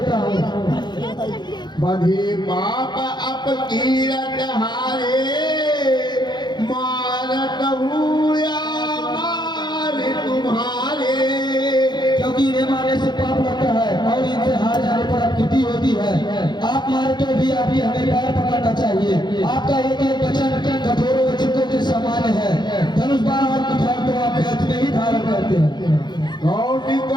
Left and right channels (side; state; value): right; late; 0.21 ms